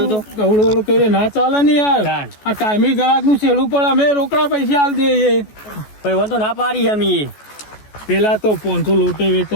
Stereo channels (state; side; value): late; right; 14 ms